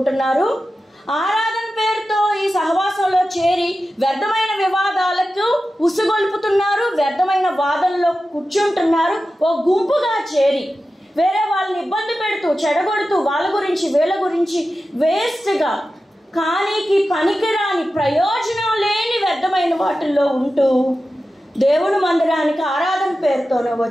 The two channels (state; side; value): normal; both; correlation 0.93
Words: ఆరాధన పేరుతో ఈ సహవాసంలో చేరి వ్యర్థమైన వివాదాలకు ఉసుగొల్పుతున్నారు, వ్యర్థమైన వాదనలో కూర్చుంటున్నారు. ఓ గుంపుగా చేరి వేరే వాళ్ళని ఇబ్బంది పెడుతూ చెడగొడుతూ వాళ్ళ గురించి వీళ్ళ గురించి వేస్ట్గా కానీకి పనికిరాని ప్రయోజనం లేని వ్యర్థమైన వాటిల్లో ఉంటూ దేవుని మందిరానికి ఆరాధన పేరుతోనే